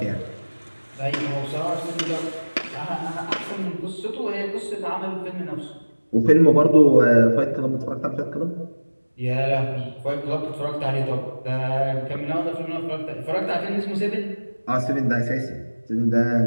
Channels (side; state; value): both; inverted; correlation -1.00